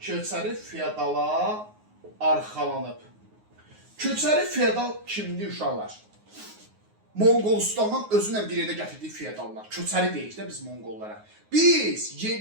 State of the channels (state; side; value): late; left; 9.5 ms